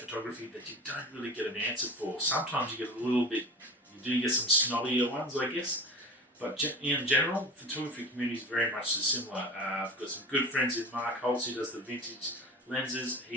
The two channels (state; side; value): normal; both; correlation 0.34